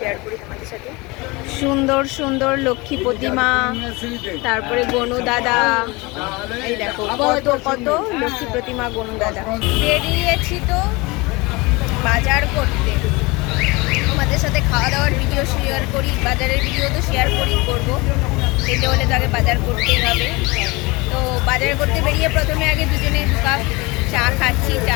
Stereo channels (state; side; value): quieter; right; 24.6 dB